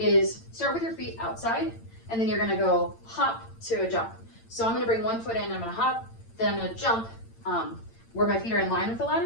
start with your feet outside, and then you're gonna go hop to a jump. So I'm gonna bring one foot in, I'm gonna hop, then I'm gonna jump where my feet are in line with the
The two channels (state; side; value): late; right; 8.8 ms